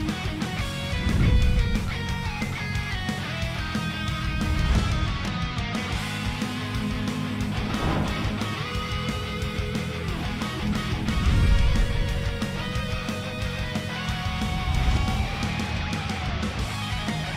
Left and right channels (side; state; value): both; identical; correlation 1.00